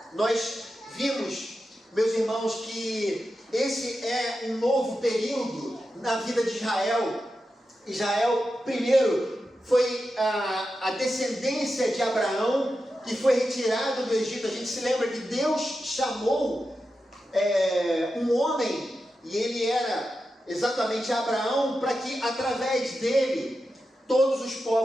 Nós vimos, meus irmãos, que esse é um novo período na vida de Israel. Israel, primeiro, foi a descendência de Abraão, que foi retirado do Egito. A gente se lembra que Deus chamou um homem, e ele era exatamente Abraão, para que através dele todos os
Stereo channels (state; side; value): normal; both; correlation 0.90